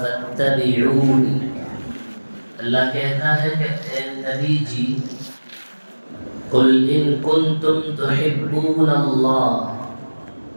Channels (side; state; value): both; inverted; correlation -1.00